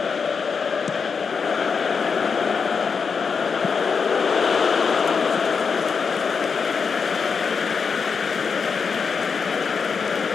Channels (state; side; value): quieter; right; 5.6 dB